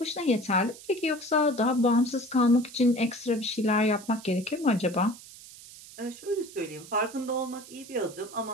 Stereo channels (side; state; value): right; noise; hiss, 18 dB below the sound